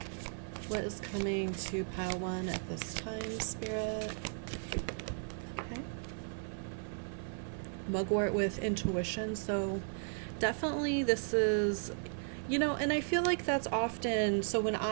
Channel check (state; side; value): silent; left; 54 dB below the other